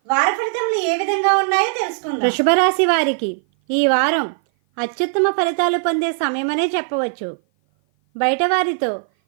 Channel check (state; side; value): silent; left; 56 dB below the other